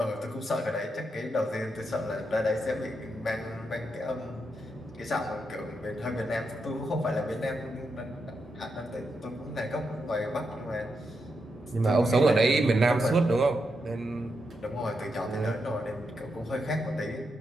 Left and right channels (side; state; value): both; normal; correlation 0.84